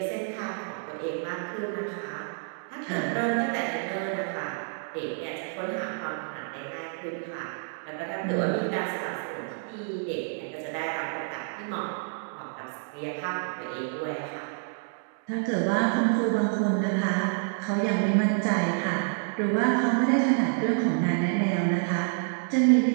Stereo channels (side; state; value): left; silent; 59 dB below the other